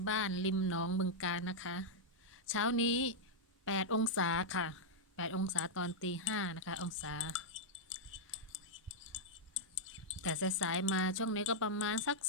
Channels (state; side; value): normal; both; correlation -0.05